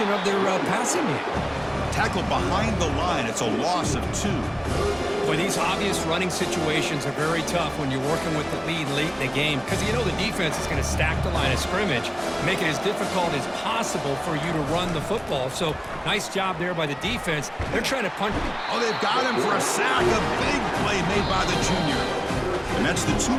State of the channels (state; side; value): identical; both; correlation 1.00